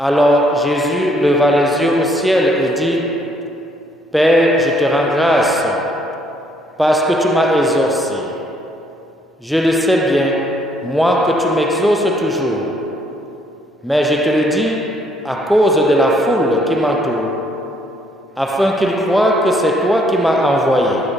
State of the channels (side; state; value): both; normal; correlation 0.67